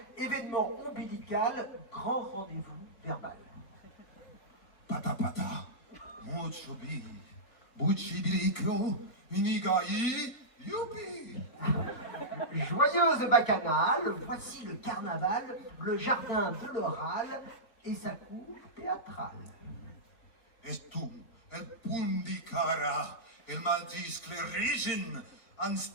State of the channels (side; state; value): right; late; 4.0 ms